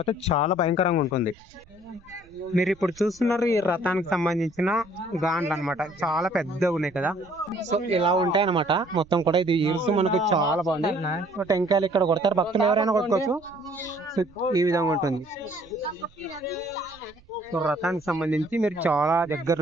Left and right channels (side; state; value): right; noise; rumble, 27 dB below the sound